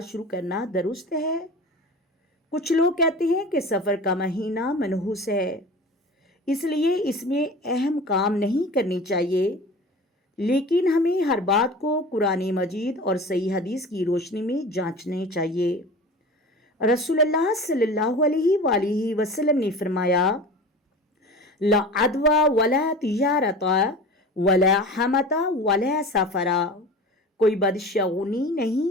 शुरू करना दुरुस्त है? कुछ लोग कहते हैं कि सफ़र का महीना मनहूस है, इसलिए इसमें अहम काम नहीं करने चाहिए, लेकिन हमें हर बात को कुरान मजीद और सही हदीस की रोशनी में जांचना चाहिए। रसूलुल्लाह सल्लल्लाहु अलैहि वसल्लम ने फरमाया, ला अदवा वला तिजारता वला हमता वला सफरा। कोई बदशगुनी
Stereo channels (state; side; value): normal; both; correlation 0.36